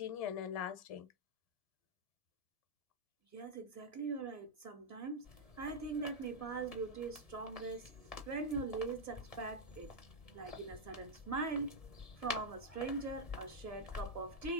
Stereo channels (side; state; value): right; late; 1.7 ms